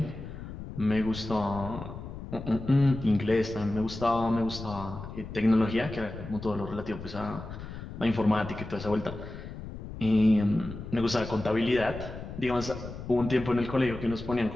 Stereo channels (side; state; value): left; noise; rumble, 11 dB below the sound